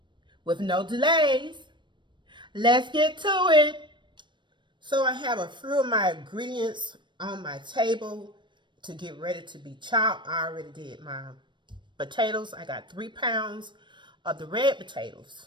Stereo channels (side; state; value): left; late; 0.22 ms